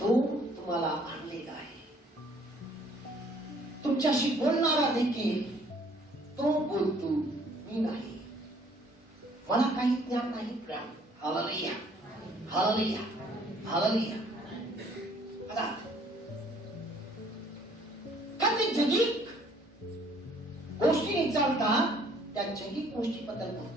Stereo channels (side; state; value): both; normal; correlation 0.60